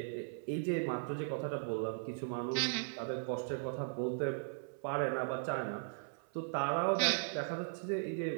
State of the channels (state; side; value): silent; left; 53 dB below the other